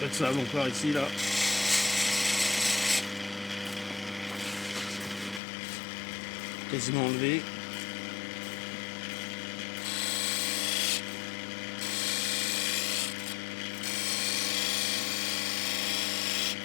de sable encore ici là. Quasiment enlevé.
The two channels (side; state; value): right; drops out; at 5.4 s